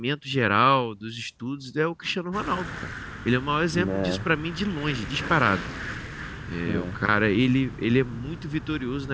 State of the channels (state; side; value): identical; both; correlation 1.00